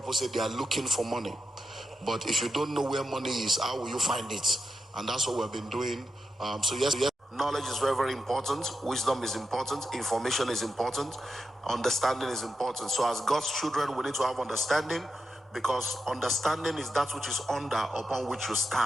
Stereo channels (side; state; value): both; normal; correlation 0.87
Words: say they are looking for money. But if you don't know where money is, how will you find it? And that's what we've been doing. So yes, knowledge is very, very important. Wisdom is important. Information is important. Understanding is important. So as God's children, we need to have understanding, because understanding is that which is under upon which you